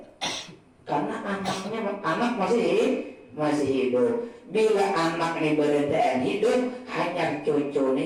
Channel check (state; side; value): identical; both; correlation 1.00